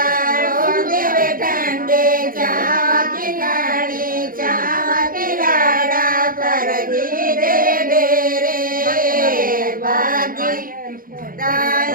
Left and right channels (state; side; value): late; left; 0.41 ms